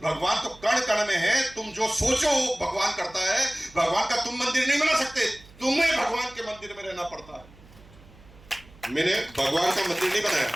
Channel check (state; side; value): noise; right; hum, 24 dB below the sound